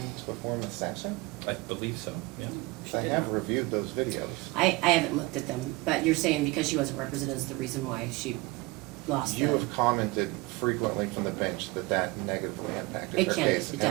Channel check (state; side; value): quieter; left; 23.1 dB